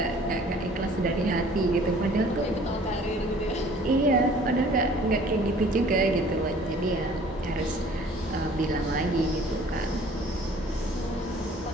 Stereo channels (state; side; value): normal; both; correlation 0.52